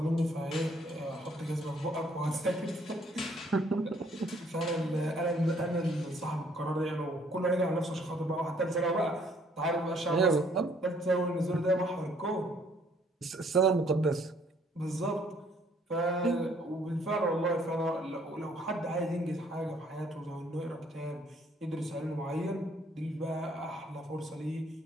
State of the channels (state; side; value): normal; both; correlation 0.63